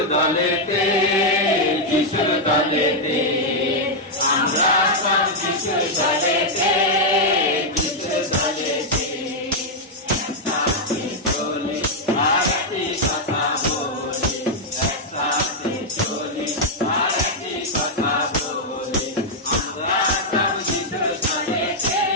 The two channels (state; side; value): normal; both; correlation -0.03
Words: দলেতে, যিশুর দলেতে, আমরা সব যিশুর দলেতে, যিশুর দলেতে। একসাথে চলি আর একটি কথা বলি, একসাথে চলি আর একটি কথা বলি, আমরা সব যিশুর দলেতে,